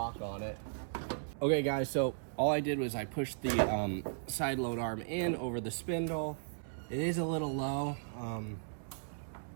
on it. Okay guys, so all I did was I pushed the side load arm in over the spindle. It is a little low.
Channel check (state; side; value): silent; left; 54 dB below the other